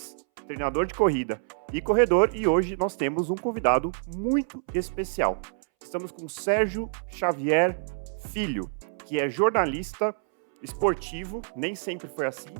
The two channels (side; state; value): left; silent; 60 dB below the other